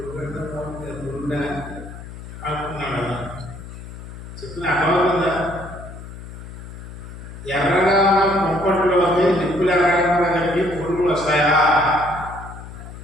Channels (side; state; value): left; noise; hum, 13 dB below the sound